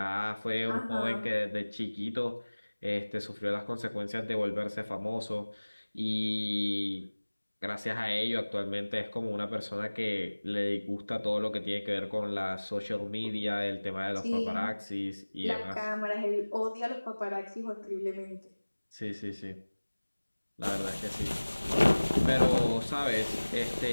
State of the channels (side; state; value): both; inverted; correlation -1.00